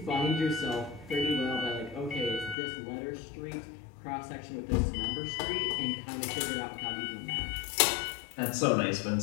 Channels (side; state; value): right; drops out; at 2.6 s